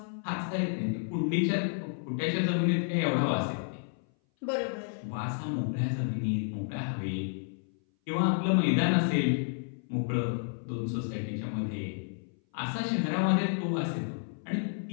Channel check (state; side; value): silent; right; 57 dB below the other